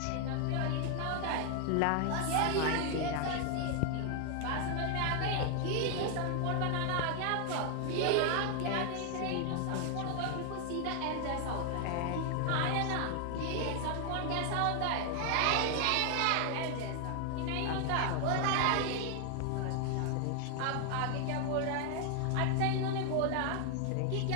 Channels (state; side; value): different; both; correlation 0.00